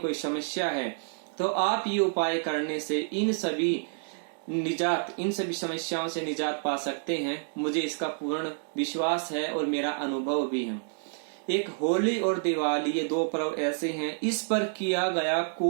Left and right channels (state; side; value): silent; left; digital silence